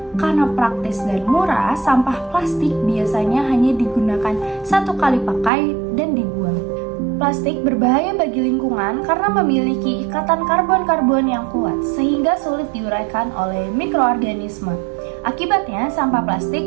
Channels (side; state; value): left; drops out; at 5.5 s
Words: Karena praktis dan murah, sampah plastik biasanya hanya digunakan satu kali pakai dan dibuang. Plastik berbahaya bagi lingkungan karena memiliki ikatan karbon-karbon yang kuat, sehingga sulit diuraikan oleh mikroorganisme. Akibatnya, sampah